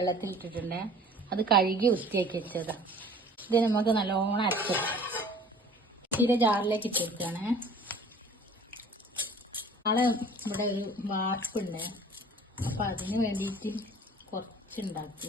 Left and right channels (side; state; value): both; normal; correlation 0.48